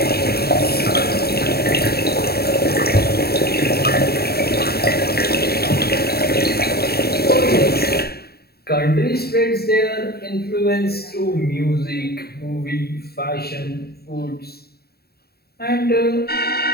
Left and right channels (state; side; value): late; right; 0.46 ms